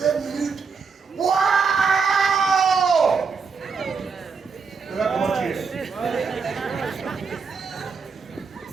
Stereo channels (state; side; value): quieter; left; 5.3 dB